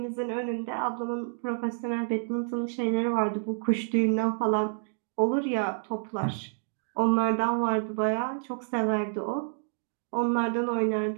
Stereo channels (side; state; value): left; silent; digital silence